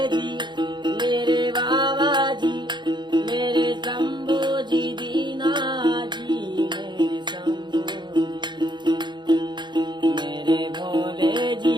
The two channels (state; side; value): late; left; 0.22 ms